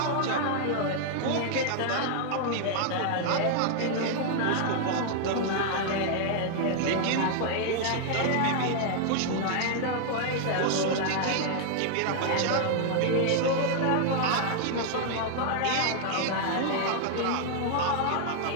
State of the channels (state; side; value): different; both; correlation 0.00